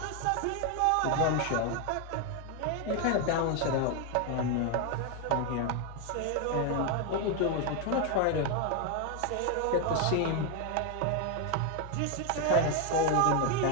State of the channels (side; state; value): both; different; correlation 0.01